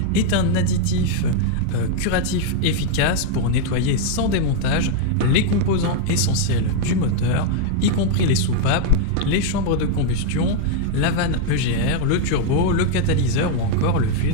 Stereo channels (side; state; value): both; different; correlation 0.00